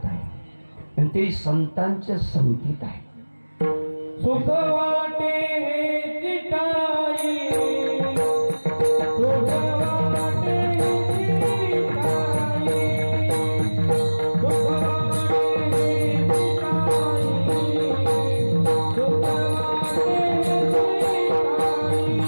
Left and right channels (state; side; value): inverted; both; correlation -1.00